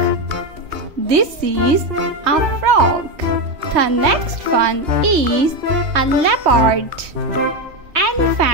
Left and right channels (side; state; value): left; late; 3.2 ms